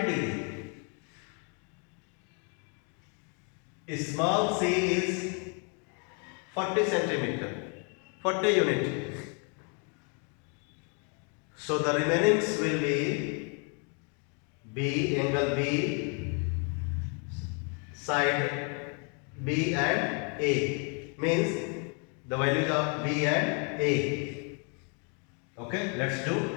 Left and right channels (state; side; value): quieter; right; 37.9 dB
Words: degree, small c is 40 centimeter, 40 unit. So the remainings will be B, angle B, side B and A, means the values of B and A. Okay, let's do.